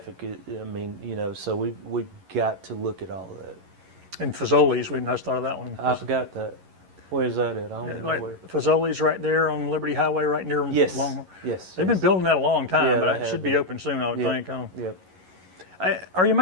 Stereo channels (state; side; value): late; left; 11 ms